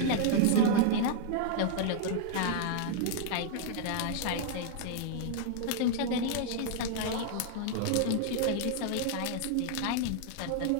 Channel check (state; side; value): different; both; correlation -0.01